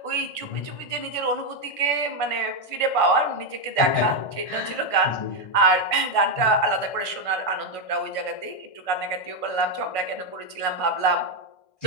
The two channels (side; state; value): right; late; 1.5 ms